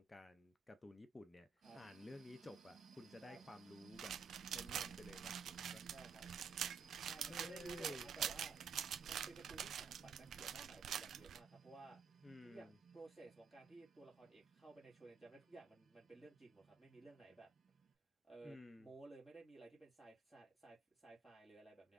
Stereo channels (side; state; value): left; quieter; 6.0 dB